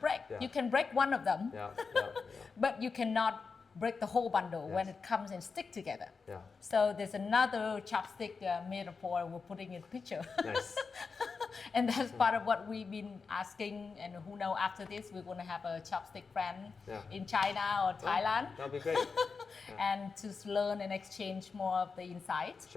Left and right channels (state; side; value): quieter; right; 4.9 dB